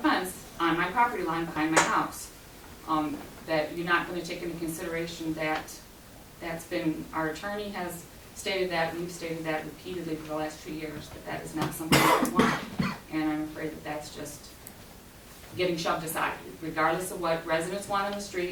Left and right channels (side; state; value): both; identical; correlation 1.00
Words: fence on my property line behind my house. That you're not gonna take into consideration that that's been, our attorney has stated that, we've stated that repeatedly for the last 2 years, that is not something that we want. And I'm afraid that that's just getting shoved aside, regardless of what residents want on the